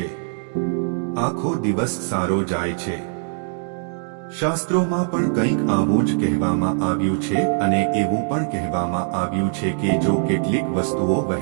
આખો દિવસ સારો જાય છે। શાસ્ત્રોમાં પણ કંઈક આવું જ કહેવામાં આવ્યું છે અને એવું પણ કહેવામાં આવ્યું છે કે જો કેટલીક વસ્તુઓ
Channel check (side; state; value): left; silent; digital silence